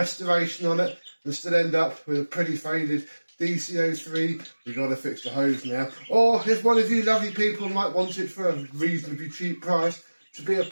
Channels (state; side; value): inverted; both; correlation -1.00